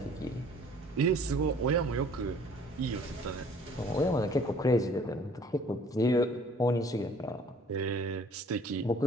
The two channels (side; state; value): both; normal; correlation 0.54